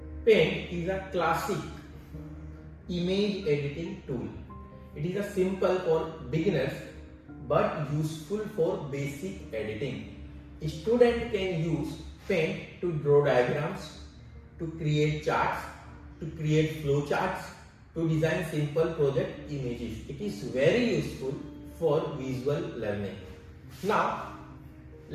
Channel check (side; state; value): both; identical; correlation 1.00